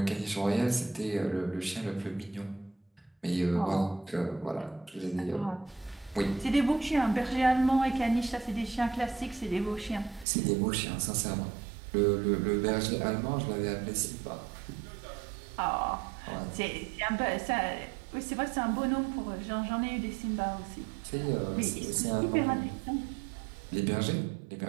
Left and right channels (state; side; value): drops out; left; at 10.2 s